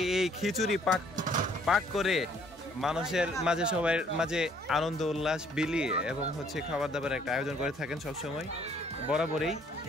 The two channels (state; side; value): normal; both; correlation 0.63